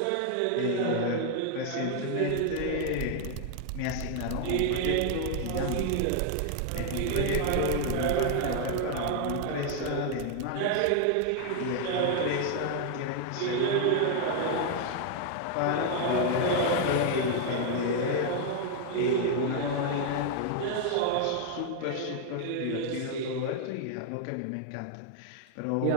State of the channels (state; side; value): different; both; correlation 0.00